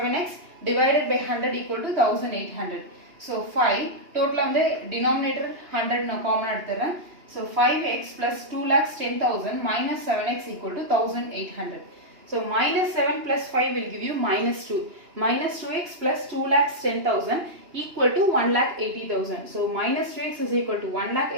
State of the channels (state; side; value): late; left; 2.9 ms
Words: divided by 100 equal to 1800. So 5 total வந்து denominator 100 நான் common எடுத்துறேன். So 5x plus 2,10,000 minus 7x equal to 1800. So minus 7 plus 5 will give you minus 2. Minus 2x plus 2,10,000 equal to 1,80,000. So minus 2x is equal to